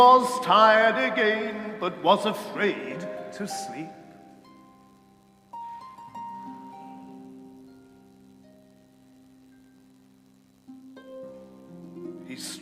tired again, but was afraid to sleep. He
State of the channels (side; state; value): both; identical; correlation 1.00